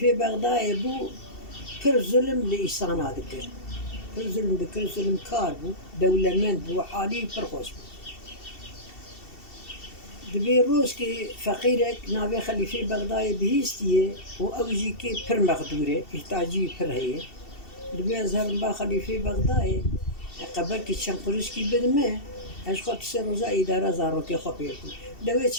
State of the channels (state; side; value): late; right; 2.7 ms